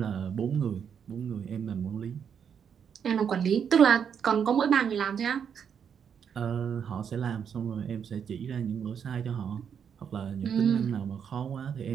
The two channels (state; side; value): quieter; left; 7.6 dB